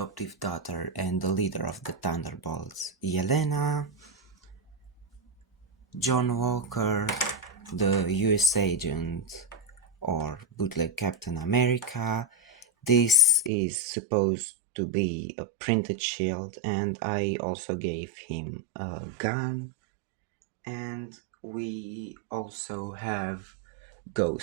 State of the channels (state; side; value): drops out; left; at 13.5 s